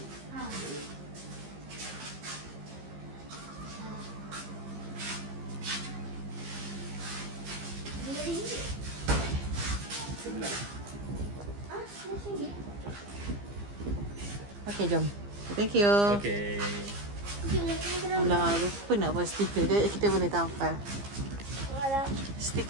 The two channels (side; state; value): left; late; 15 ms